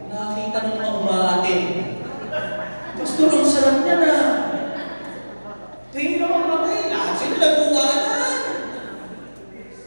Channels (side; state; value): both; inverted; correlation -1.00